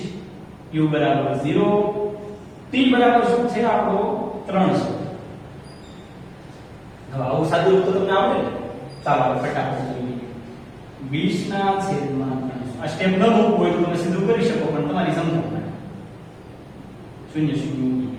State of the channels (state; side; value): identical; both; correlation 1.00